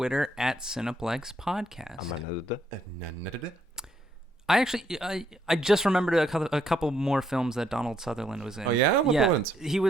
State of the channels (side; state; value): both; normal; correlation 0.72